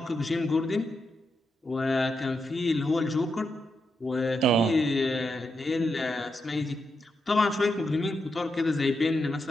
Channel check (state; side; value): normal; both; correlation 0.84